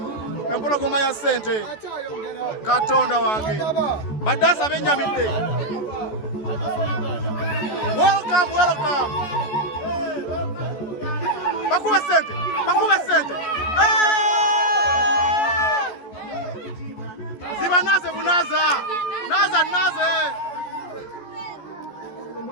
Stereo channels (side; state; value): right; late; 14 ms